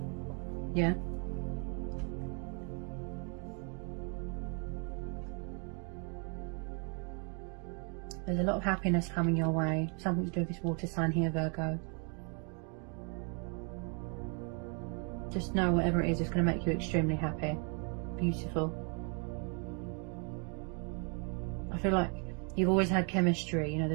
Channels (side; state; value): left; quieter; 37.0 dB